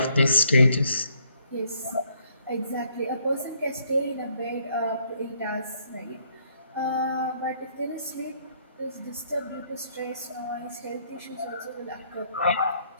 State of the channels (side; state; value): both; inverted; correlation -0.67